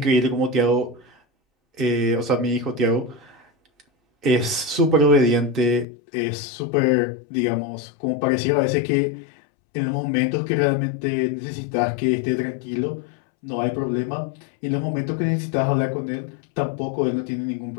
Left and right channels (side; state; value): right; drops out; at 5.9 s